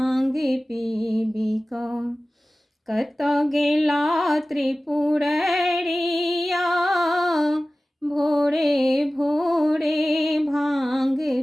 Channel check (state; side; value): normal; both; correlation 0.97